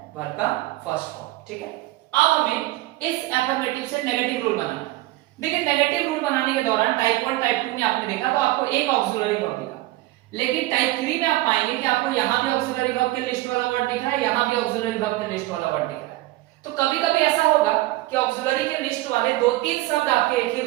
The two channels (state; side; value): quieter; left; 18.1 dB